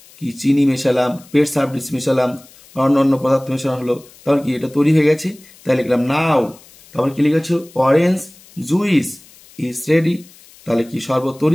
কি চিনি মেশালাম, পেট সার্ভিস মেশালাম, অন্য পদার্থ মেশানো হলো, তাহলে কি এটা তৈরি হয়ে গেছে, তাই লিখলাম নাও। তারপর কি লিখেছ, অরেঞ্জ জুইস ইজ রেডি, তাহলে কি শরবত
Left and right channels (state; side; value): noise; left; hiss, 25 dB below the sound